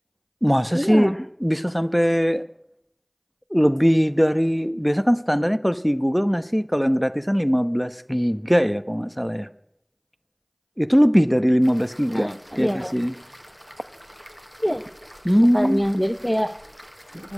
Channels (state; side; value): identical; both; correlation 1.00